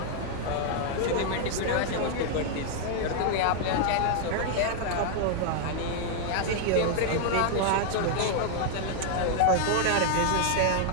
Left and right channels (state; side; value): different; both; correlation 0.00